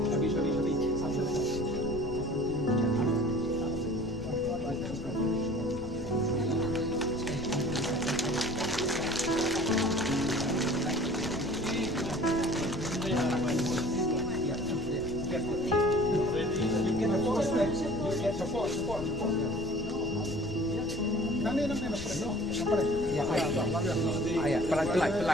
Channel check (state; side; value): noise; left; rumble, 13 dB below the sound